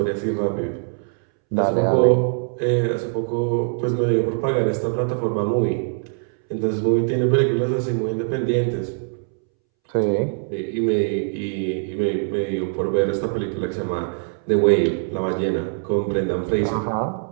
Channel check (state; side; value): silent; left; 64 dB below the other